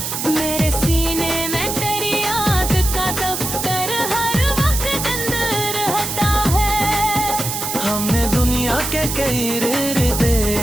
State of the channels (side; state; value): right; noise; hiss, 4 dB below the sound